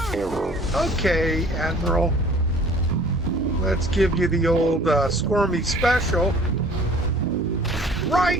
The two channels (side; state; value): both; normal; correlation 0.51